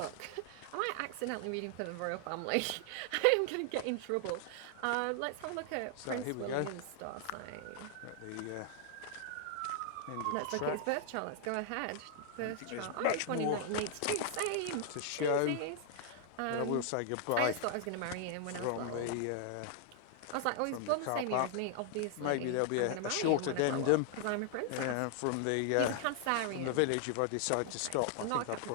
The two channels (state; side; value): different; both; correlation 0.00